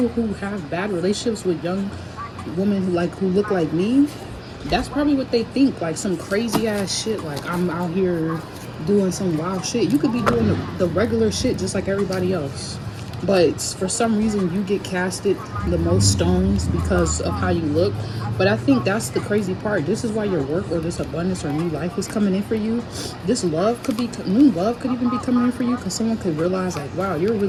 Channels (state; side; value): identical; both; correlation 1.00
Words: who have bad relationships with young women who look like me, that's probably what they think, like some crazy ass shit, like I'm out here doing some wild shit. You could be doing the regular shit just like everybody else, but for some reason you get casted the most stones because of how you look. But I think that's the crazy part. This is why your work or this abundance or new life is coming in for you. This love could be, new love could even be coming in for you, because someone could realize like, wow, you're